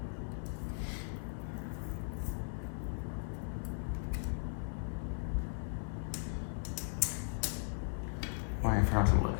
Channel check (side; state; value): right; silent; 53 dB below the other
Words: Why I forgot to look.